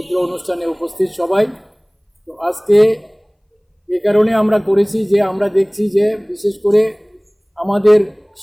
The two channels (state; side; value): identical; both; correlation 1.00